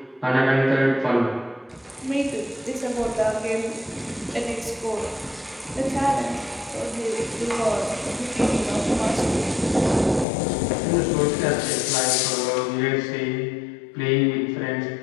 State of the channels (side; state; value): right; drops out; at 10.2 s